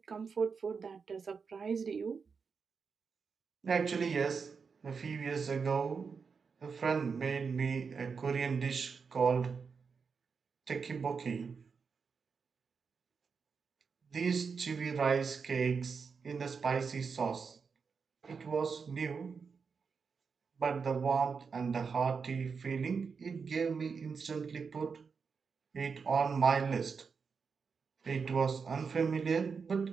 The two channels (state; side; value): quieter; left; 5.5 dB